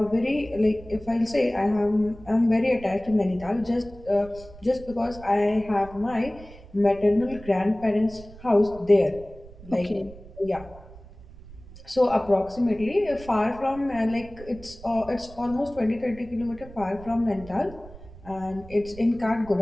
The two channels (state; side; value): noise; right; rumble, 18 dB below the sound